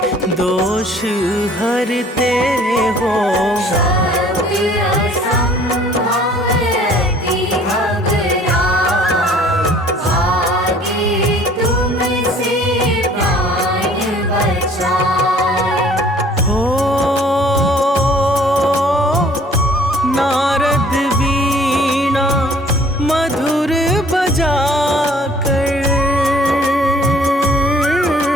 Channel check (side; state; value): both; normal; correlation 0.55